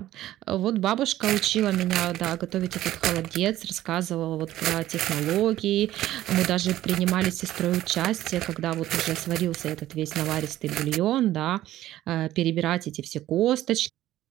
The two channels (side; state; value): left; quieter; 14.1 dB